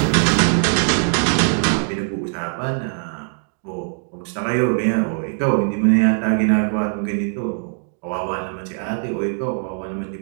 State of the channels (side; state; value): left; silent; 62 dB below the other